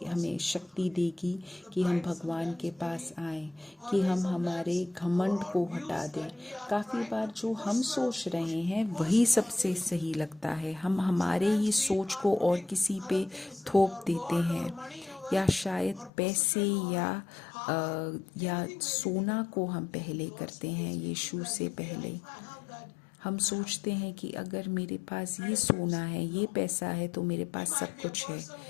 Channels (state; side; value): drops out; right; at 16.1 s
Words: शक्ति देगी कि हम भगवान के पास आएं, कि हम हमारे घमंड को हटा दें। काफ़ी बार जो हम सोच रहे हैं वही सबसे सही लगता है, हम हमारे ही सोच को और किसी पे थोप देते हैं, या शायद पैसे या सोना को हम पहले करते हैं यीशु से पहले। हम सोचते हैं कि अगर मेरे पास ये सोना है, ये पैसा है, तो मेरे पास सब कुछ है।